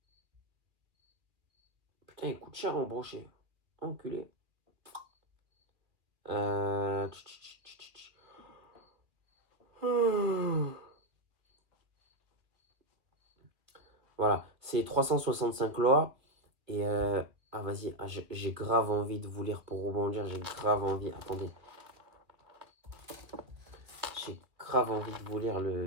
Putain, il coûte cher en brochet. Enculé. Voilà, c'est 365 lois. Et ah vas-y, j'ai grave envie de vous lire pour rebondir. J'ai grave envie. Attendez. J'ai grave envie de vous lire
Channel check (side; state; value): left; late; 2.2 ms